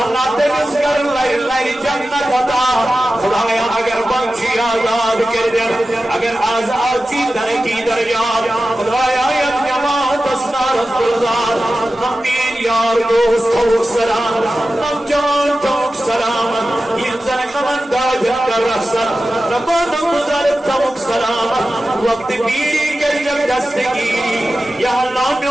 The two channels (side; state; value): both; normal; correlation 0.94